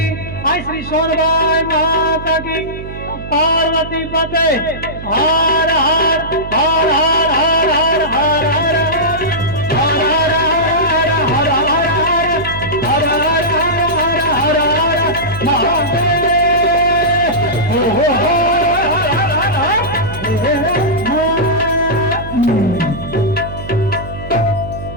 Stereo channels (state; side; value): noise; right; hum, 11 dB below the sound